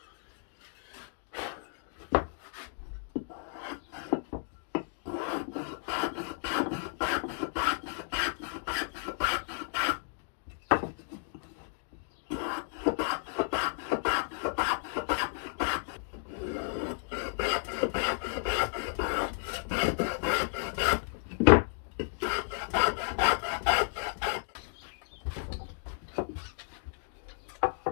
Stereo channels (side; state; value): right; silent; digital silence